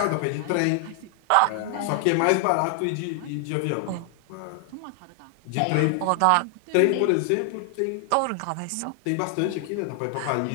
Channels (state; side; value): different; both; correlation 0.00